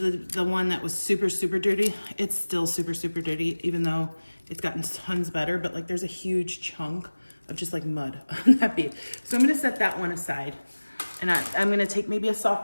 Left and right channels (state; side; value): inverted; both; correlation -1.00